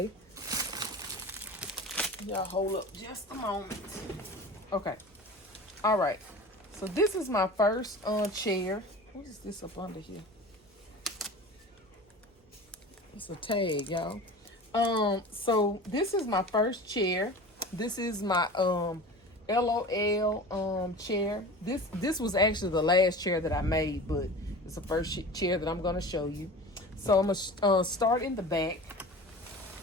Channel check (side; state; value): both; normal; correlation 0.36